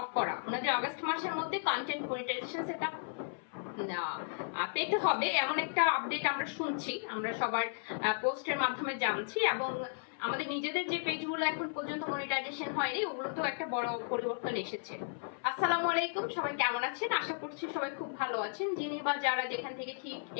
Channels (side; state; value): right; silent; 55 dB below the other